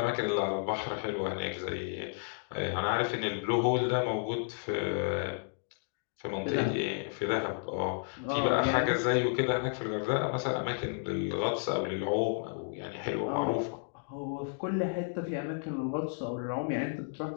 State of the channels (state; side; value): silent; right; digital silence